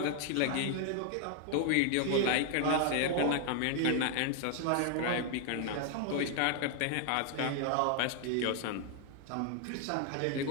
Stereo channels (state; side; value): different; both; correlation 0.00